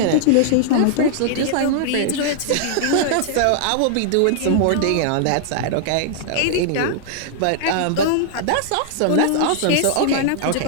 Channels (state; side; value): different; both; correlation -0.01